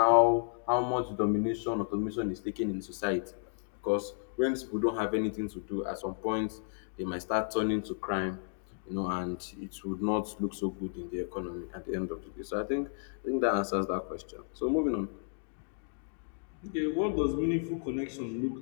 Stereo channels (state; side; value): silent; right; digital silence